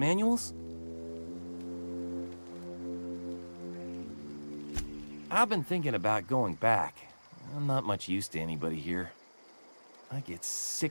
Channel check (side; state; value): both; inverted; correlation -1.00